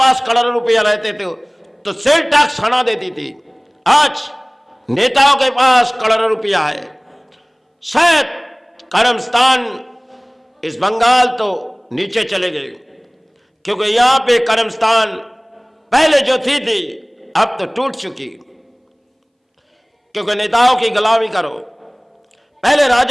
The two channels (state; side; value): identical; both; correlation 1.00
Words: करोड़ों रुपया रहते थे तो सेल टैक्स हटा देती थी। आज नेताओं के पास करोड़ों रुपया है। शायद कर्मस्थान इस बंगाल तो नीचे चले गए, क्योंकि यहां पे कर्मस्थान पहले जो थी अब तो टूट चुकी, क्योंकि नेताओं की गुलामी करो। पहले